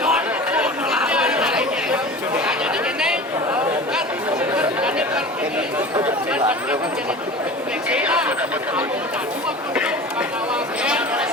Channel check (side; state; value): both; normal; correlation 0.36